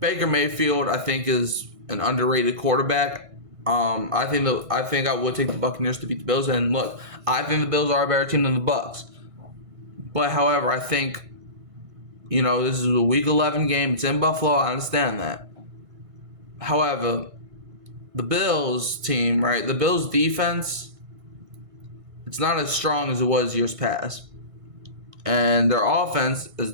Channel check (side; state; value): left; late; 1.5 ms